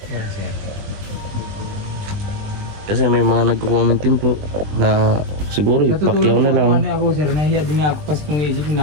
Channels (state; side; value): late; left; 20 ms